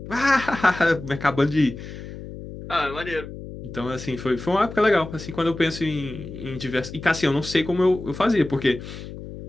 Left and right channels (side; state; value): left; noise; hum, 12 dB below the sound